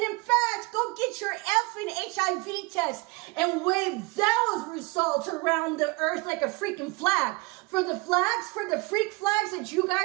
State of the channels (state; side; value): quieter; left; 25.4 dB